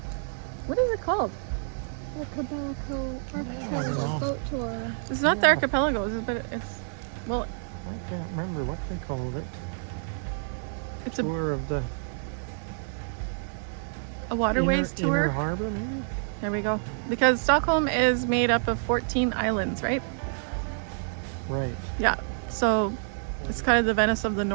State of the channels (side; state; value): left; silent; digital silence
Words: what is it called? Archipelago boat tour. It's not the archipelago, but it's, well, I can't remember what they called it. it's Tour of the a waterways inner tour. harbour, maybe? There we go. Because Stockholm is made up of 14 islands, right? Right. Yeah. So it's kind of the Venice of the